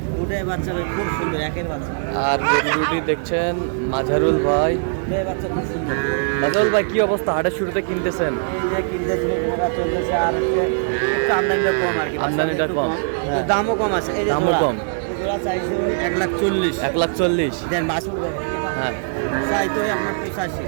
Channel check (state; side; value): silent; left; digital silence